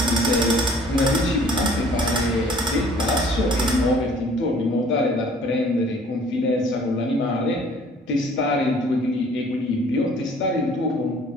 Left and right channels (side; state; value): both; normal; correlation 0.54